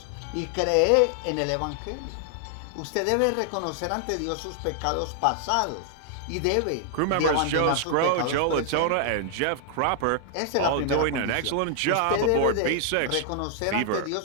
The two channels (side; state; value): both; different; correlation -0.01